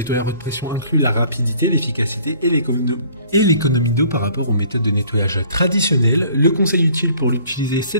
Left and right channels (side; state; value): both; inverted; correlation -0.55